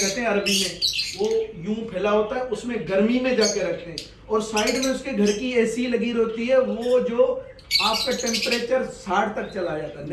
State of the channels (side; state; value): both; identical; correlation 1.00